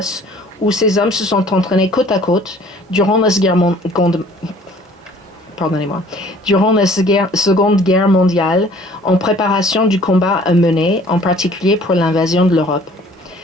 où ces hommes se sont entraînés côte à côte durant la Seconde Guerre mondiale en préparation du combat à mener, en particulier pour l'invasion de l'Europe.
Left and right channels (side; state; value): both; normal; correlation 0.53